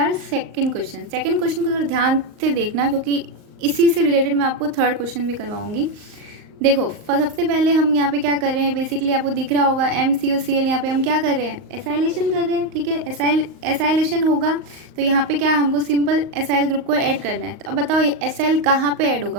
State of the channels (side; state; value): left; late; 38 ms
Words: second question. Second question को थोड़ा ध्यान से देखना क्योंकि इसी से रिलेटेड मैं आपको थर्ड क्वेश्चन भी करवाऊंगी। देखो सबसे पहले हम यहाँ पे क्या कर रहे हैं, बेसिकली आपको दिख रहा होगा MCOCl। यहाँ पे हम क्या कर रहे हैं, एसाइलेशन कर रहे हैं। ठीक है। एसाइलेशन होगा तो यहाँ पे क्या, हमको सिंपल एसाइल ग्रुप को ऐड करना है। तो अब बताओ एसाइल कहाँ पे ऐड